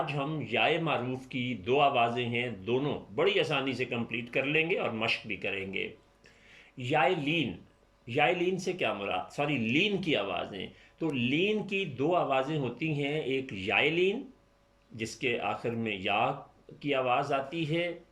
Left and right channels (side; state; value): both; identical; correlation 1.00